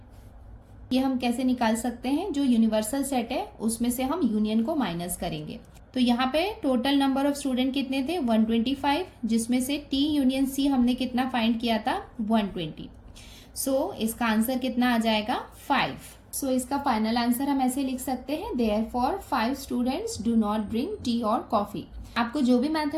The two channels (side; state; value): both; identical; correlation 1.00